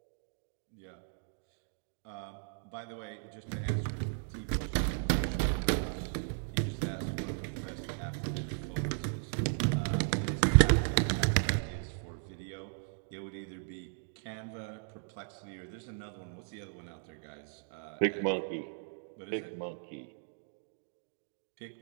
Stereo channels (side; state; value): left; silent; digital silence